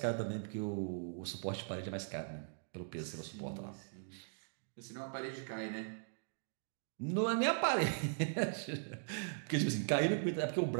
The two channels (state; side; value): silent; left; digital silence